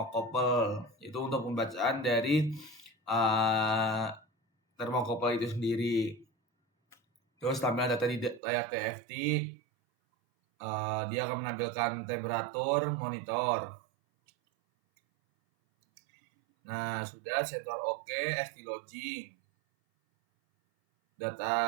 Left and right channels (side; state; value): left; drops out; at 8.4 s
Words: itu untuk pembacaan dari thermocouple itu sendiri. Terus tampilan data di layar TFT, dia akan menampilkan temperatur monitor. Nah, sudah sensor oke, SD logging,